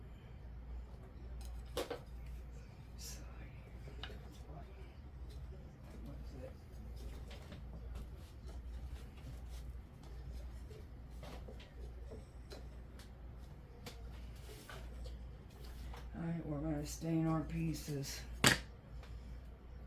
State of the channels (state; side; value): identical; both; correlation 1.00